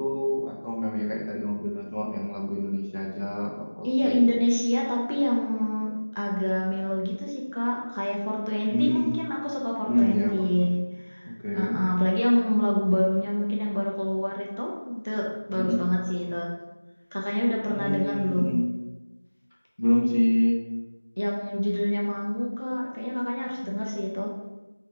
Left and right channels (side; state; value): both; inverted; correlation -1.00